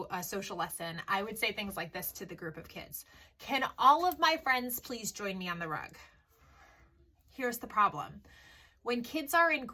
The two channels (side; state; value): both; identical; correlation 1.00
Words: a social lesson, I would say things like this to the group of kids. Can all of my friends please join me on the rug? Here's the problem. When kids are in